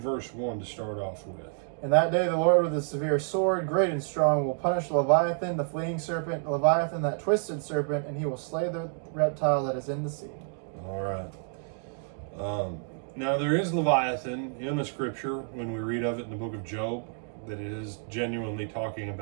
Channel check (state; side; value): silent; left; 58 dB below the other